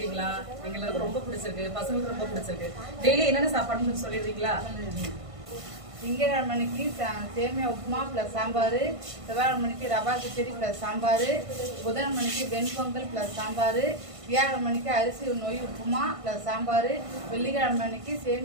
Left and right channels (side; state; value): left; late; 1.5 ms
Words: எங்களுக்கு ரொம்ப பிடிச்சிருக்கு. பசங்களுக்கு ரொம்ப பிடிச்சிருக்கு. டெய்லி என்னென்ன சாப்பாடுன்னு சொல்லிடுறீங்களா? திங்கட்கிழமைக்கு சேமியா உப்புமா ப்ளஸ் சாம்பார், செவ்வாய்க்கிழமைக்கு ரவா கிச்சடி ப்ளஸ் சாம்பார், புதன்கிழமைக்கு வெண்பொங்கல் ப்ளஸ் சாம்பார், வியாழக்கிழமைக்கு அரிசி நொய் உப்புமா ப்ளஸ் சாம்பார், வெள்ளிக்கிழமைக்கு